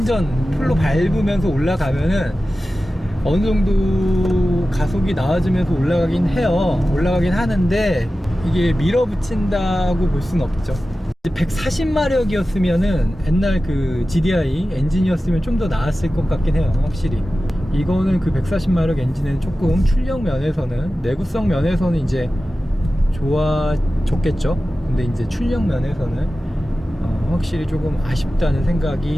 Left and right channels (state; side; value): normal; both; correlation 0.95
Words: 풀로 밟으면서 올라가면은 어느 정도 가속이 나와주면서 올라가긴 하는데, 이게 밀어붙인다고 볼 수는 없죠. 140마력이었으면은 옛날 그 GDI 엔진이었으면 좀 더 나았을 것 같긴 해요. 확실히 이거는 그 140마력 엔진은 조금 출력 면에서는, 내구성 면에서는 이제 좋아졌겠죠. 근데 이제 출력 면에서는 확실히 조금 아쉽다는